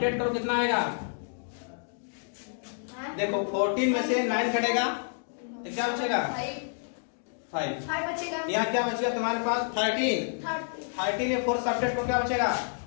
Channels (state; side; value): silent; right; digital silence